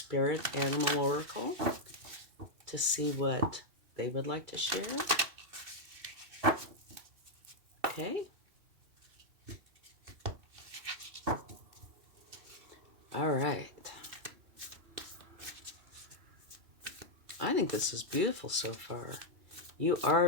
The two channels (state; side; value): late; left; 2.7 ms